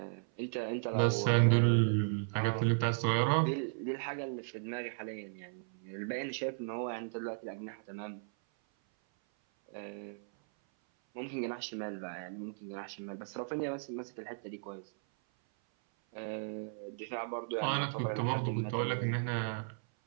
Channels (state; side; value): silent; left; 54 dB below the other